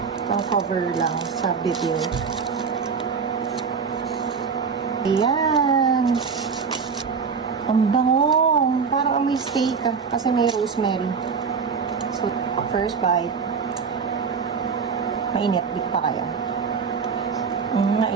Pang cover lang sa video. Ayan! Ang bango! Parang may steak kasi may rosemary. So, first bite. Mainit. Di pa kaya.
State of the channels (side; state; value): left; quieter; 5.7 dB